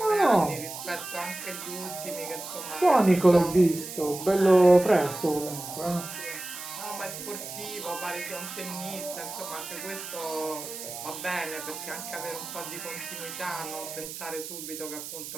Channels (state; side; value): noise; right; hiss, 10 dB below the sound